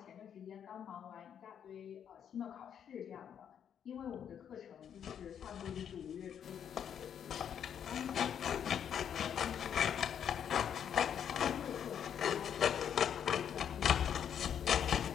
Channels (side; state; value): right; quieter; 8.6 dB